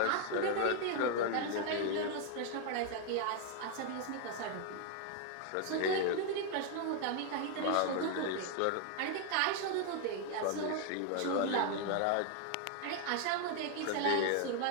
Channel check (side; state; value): both; different; correlation 0.00